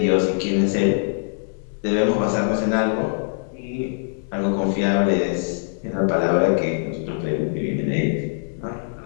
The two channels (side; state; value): right; silent; digital silence